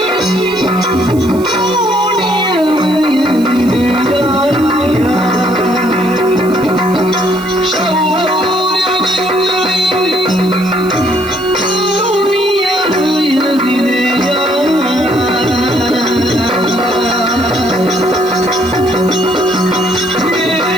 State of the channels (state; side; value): noise; right; hiss, 20 dB below the sound